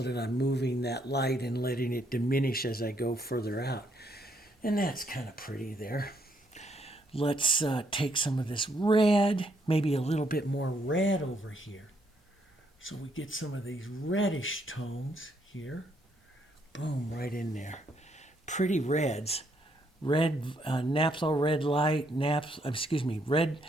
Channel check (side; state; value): both; normal; correlation 0.72